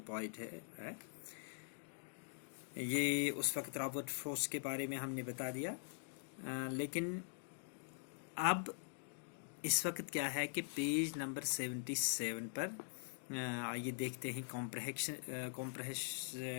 पोइट है। ये उस वक्त रॉबर्ट फ्रॉस्ट के बारे में हमने बता दिया, लेकिन अब इस वक्त क्या है कि पेज नंबर 77 पर आइए देखते हैं।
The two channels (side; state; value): right; silent; digital silence